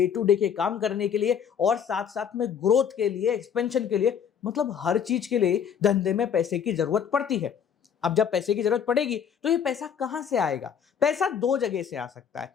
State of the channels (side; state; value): right; quieter; 7.8 dB